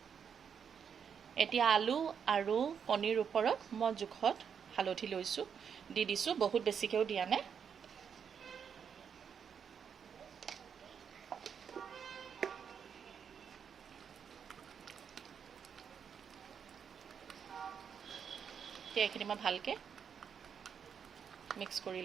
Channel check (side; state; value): left; quieter; 7.2 dB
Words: এতিয়া আলু আৰু কণীৰ ওপৰত মই জোখত হালধি লৈছোঁ, দি দিছোঁ। বহুত বেছিকৈও দিয়া নাই। এতিয়া এইখিনি মই ভালকৈ মিক্স কৰি